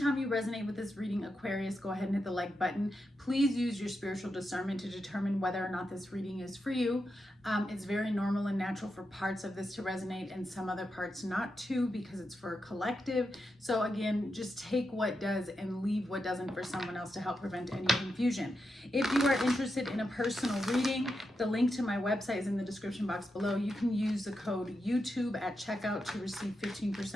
you resonate with this reading, Aquarius, go ahead and hit the like button. Please use your spiritual discernment to determine whether or not this reading is for you. It's very normal and natural for parts of this to resonate and some other parts not to, because it's for a collective. So again, just take what does and leave what doesn't for someone else to help prevent any confusion. If you are interested in a personal reading, the link to my website is in the description box below. You can use the code YouTube at checkout to receive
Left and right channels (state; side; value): normal; both; correlation 0.87